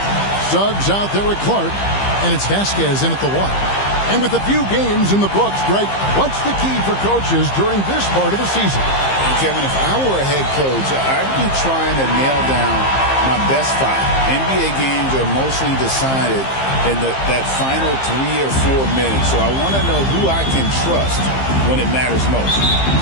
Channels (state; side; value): late; right; 15 ms